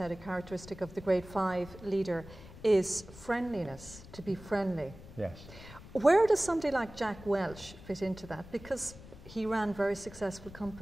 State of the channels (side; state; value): left; noise; rumble, 17 dB below the sound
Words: a characteristic of the grade 5 leader, is friendliness, to be friendly. Yes. Where does somebody like Jack Welch fit into that? Because he ran very successful